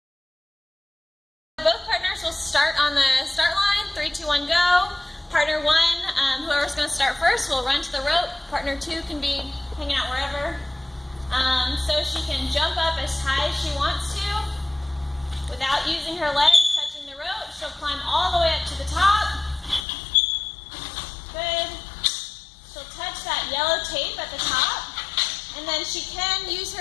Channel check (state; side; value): drops out; right; at 19.9 s